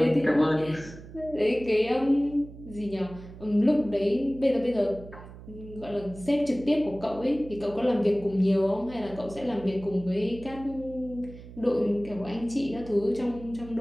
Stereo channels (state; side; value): noise; right; hum, 16 dB below the sound